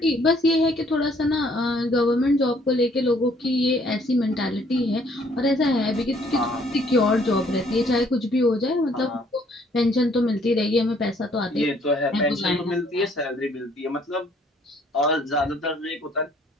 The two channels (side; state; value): both; normal; correlation 0.63